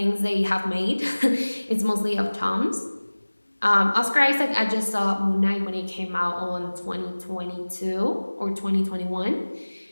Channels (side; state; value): both; inverted; correlation -1.00